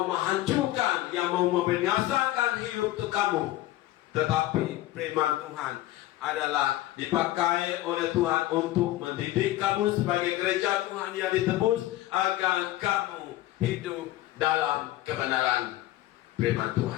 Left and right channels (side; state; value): right; quieter; 15.7 dB